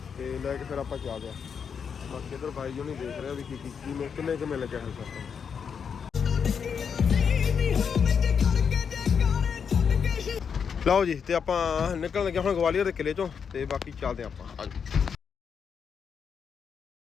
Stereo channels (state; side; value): quieter; right; 6.7 dB